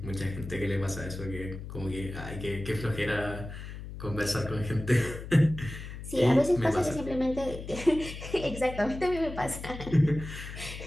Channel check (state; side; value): noise; left; hum, 10 dB below the sound